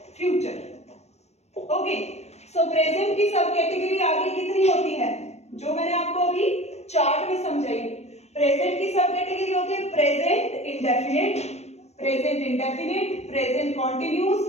future. Okay, so present की सब कैटेगरी आगे कितनी होती है जो मैंने आपको अभी चार्ट में समझाई. प्रेजेंट की सब कैटेगरी होती है present indefinite, present continuous,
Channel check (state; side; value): late; right; 0.32 ms